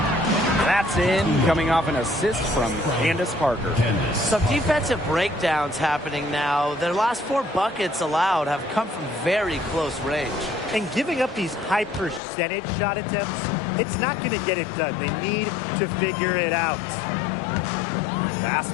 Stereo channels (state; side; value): drops out; right; at 12.2 s